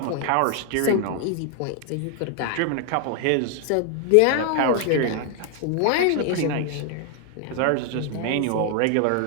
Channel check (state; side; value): different; both; correlation 0.00